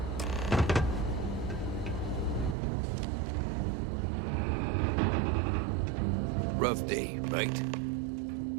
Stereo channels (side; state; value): left; drops out; at 2.6 s